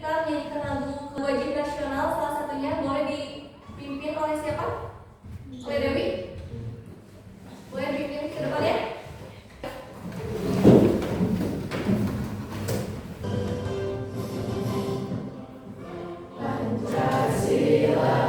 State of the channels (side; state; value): both; identical; correlation 1.00